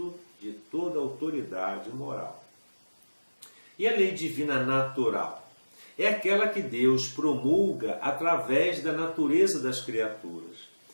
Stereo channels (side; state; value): both; inverted; correlation -1.00